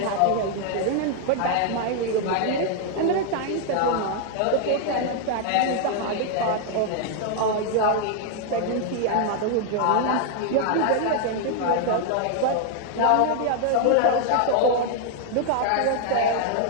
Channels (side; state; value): both; different; correlation 0.00